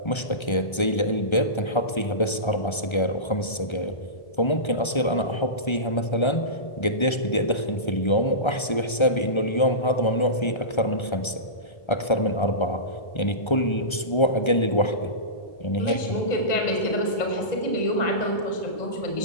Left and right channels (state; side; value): late; right; 1.3 ms